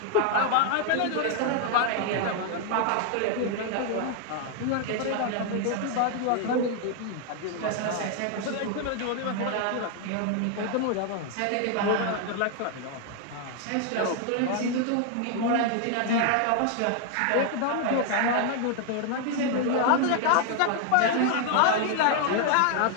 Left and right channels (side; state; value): both; different; correlation 0.00